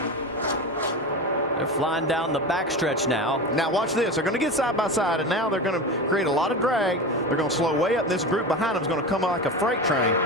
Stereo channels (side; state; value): both; normal; correlation 0.25